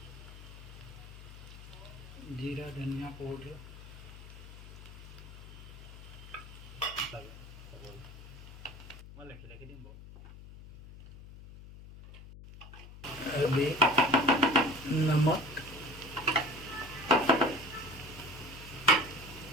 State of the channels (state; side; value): noise; left; hum, 15 dB below the sound